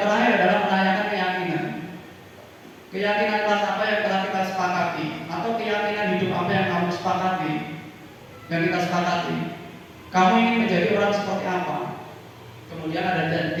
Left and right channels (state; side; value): identical; both; correlation 1.00